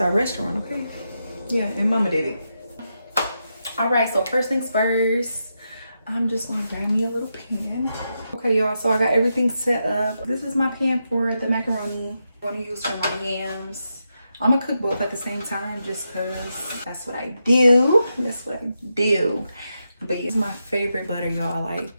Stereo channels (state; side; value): inverted; both; correlation -0.86